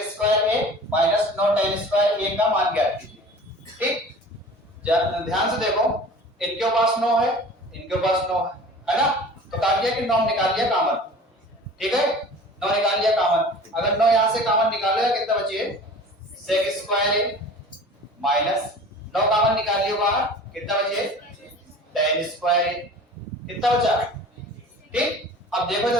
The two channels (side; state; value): both; normal; correlation 0.41